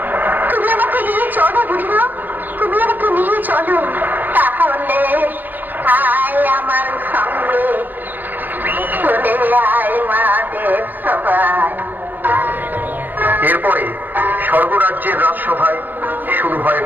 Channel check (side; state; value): left; late; 0.090 ms